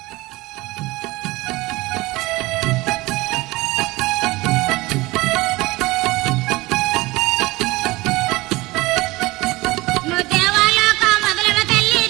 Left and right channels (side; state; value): left; quieter; 21.0 dB